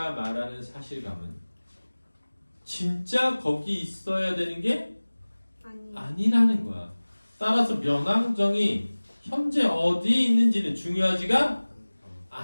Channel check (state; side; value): inverted; both; correlation -1.00